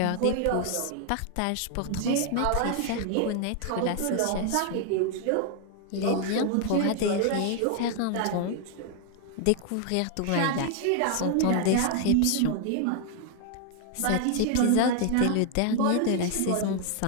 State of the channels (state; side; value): different; both; correlation 0.00